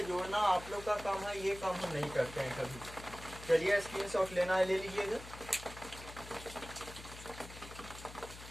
जोड़ना आप लोग का काम है, ये काम हम नहीं करते हैं कभी। चलिए स्क्रीनशॉट लेना है, ले लीजिएगा।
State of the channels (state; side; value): noise; left; hum, 14 dB below the sound